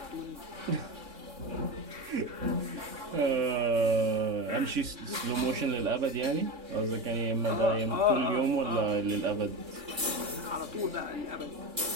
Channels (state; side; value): late; left; 3.6 ms